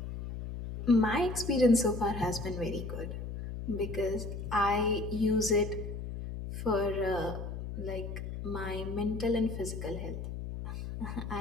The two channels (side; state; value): left; noise; hum, 6 dB below the sound